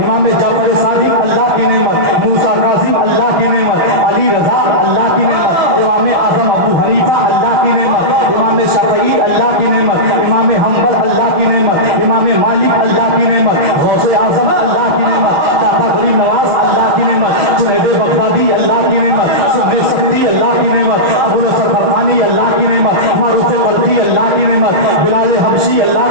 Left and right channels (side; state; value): left; late; 6.2 ms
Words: امام جعفر صادق اللہ کی نعمت. موسیٰ کاظم اللہ کی نعمت. علی رضا اللہ کی نعمت. امام اعظم ابو حنیفہ اللہ کی نعمت. امام شافعی اللہ کی نعمت. امام حنبل اللہ کی نعمت. امام مالک اللہ کی نعمت. غوث اعظم اللہ کی نعمت. داتا غریب نواز اللہ کی نعمت. جنید بغدادی اللہ کی نعمت. صدر سکتی اللہ کی نعمت. ابو نصر فرقانی اللہ کی نعمت. معروف قدری اللہ کی نعمت. بلال حبشی اللہ